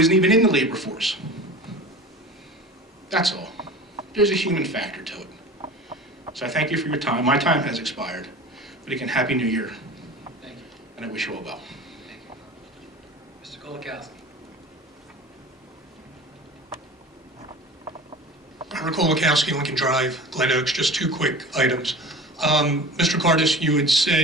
even in the labor force. That's all. There's a human factor to it. So I thank you for your time. My time has expired. But again, Happy New Year. Thank you. And I wish you all well. Thank you. Mr. Kolakowski. Robert Kolakowski, Lincoln Drive, Glen Oaks, just two quick items. Mr. Cardis, you had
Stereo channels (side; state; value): both; normal; correlation 0.37